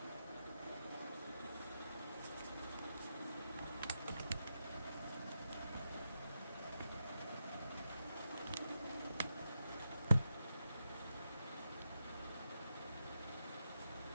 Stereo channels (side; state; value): both; inverted; correlation -0.86